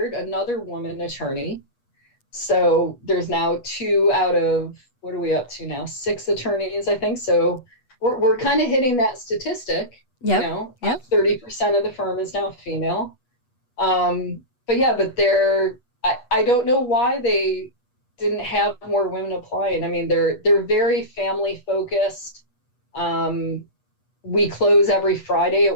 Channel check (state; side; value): late; right; 8.3 ms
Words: another woman attorney. So there's now 2 out of, what are we up to now? 6 attorneys, I think. So we're kind of hitting that statistic. Yep. 30% of the firm is now female. But I don't know why they didn't have more women applying. I mean, they're very family focused. We close every Friday at